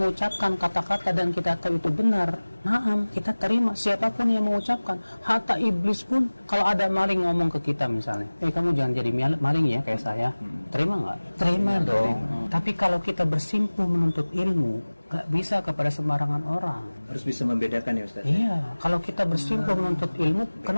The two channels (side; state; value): both; inverted; correlation -1.00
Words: kata-kata dan kita tahu itu benar, naam, kita terima siapapun yang mengucapkan. Hatta iblis pun, kalau ada maling ngomong ke kita misalnya, kamu jangan jadi maling ya kayak saya. Terima nggak? Terima dong. Tapi kalau kita bersimpuh menuntut ilmu, nggak bisa kepada sembarangan orang. Harus bisa membedakan ya Ustaz. Iya, kalau kita bersimpuh menuntut ilmu,